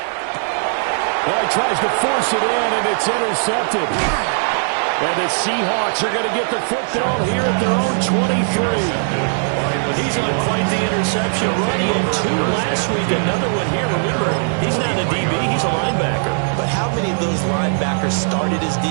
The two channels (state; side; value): silent; left; digital silence